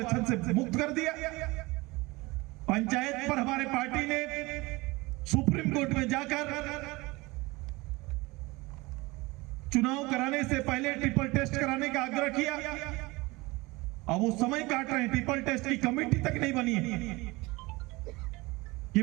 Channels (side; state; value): left; quieter; 22.7 dB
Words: से मुक्त कर दिया। पंचायत पर हमारे पार्टी ने सुप्रीम कोर्ट में जाकर चुनाव कराने से पहले ट्रिपल टेस्ट कराने का आग्रह किया। अब वो समय काट रहे हैं, ट्रिपल टेस्ट की कमेटी तक नहीं बनी है